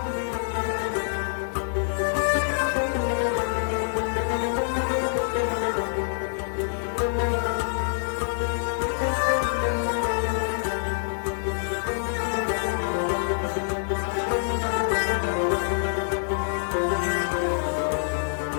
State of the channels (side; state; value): right; silent; digital silence